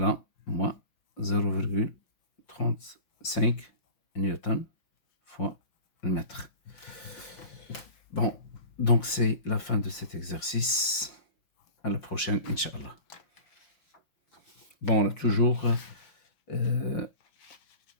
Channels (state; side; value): late; right; 5.7 ms